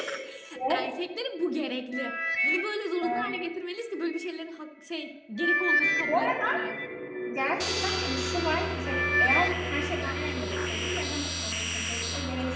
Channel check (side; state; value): both; identical; correlation 1.00